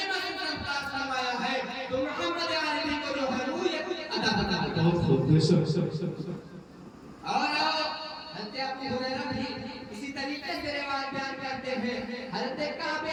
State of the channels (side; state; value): both; identical; correlation 1.00